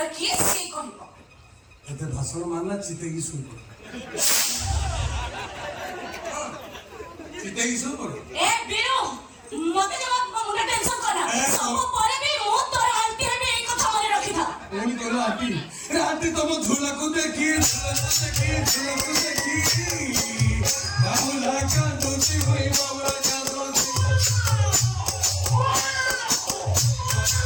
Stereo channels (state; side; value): identical; both; correlation 1.00